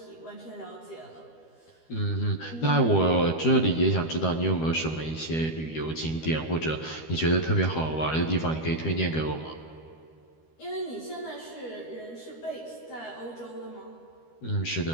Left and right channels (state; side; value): late; right; 13 ms